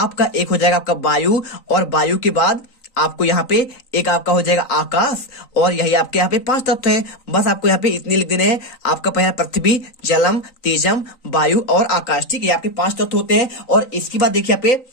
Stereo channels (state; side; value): late; right; 3.9 ms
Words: एक हो जाएगा आपका वायु, और वायु के बाद आपको यहाँ पे एक आपका हो जाएगा आकाश। और यही आपके यहाँ पे 5 तत्व हैं। बस आपको यहाँ पे इतने लिख देने हैं। आपका पहला पृथ्वी, जलम, तेजम, वायु और आकाश, ठीक है, आपके 5 तत्व होते हैं। और इसके बाद देखिए यहाँ